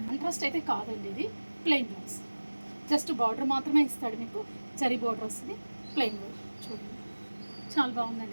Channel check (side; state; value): both; inverted; correlation -1.00